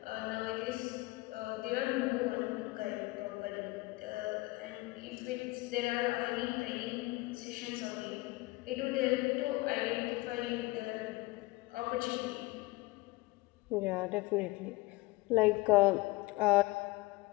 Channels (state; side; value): quieter; right; 21.9 dB